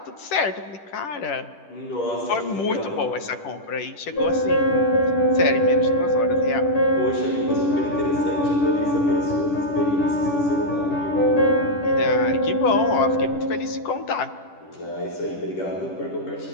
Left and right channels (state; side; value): late; right; 10 ms